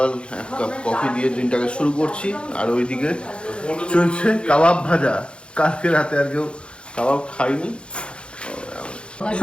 এক কাপ কফি দিয়ে দিনটাকে শুরু করছি। আর ওইদিকে চলছে কাবাব ভাজা। কালকে রাতে আর কেউ কাবাব খাইনি।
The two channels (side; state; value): right; late; 0.056 ms